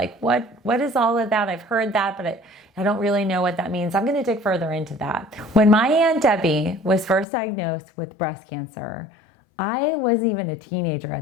what is all of that? I've heard that, but I don't really know what that means. I'm going to dig further into that. When my Aunt Debbie was first diagnosed with breast cancer, I wasn't even a teenager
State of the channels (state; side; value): drops out; right; at 7.2 s